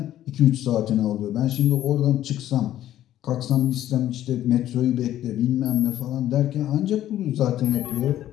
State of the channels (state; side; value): quieter; right; 12.6 dB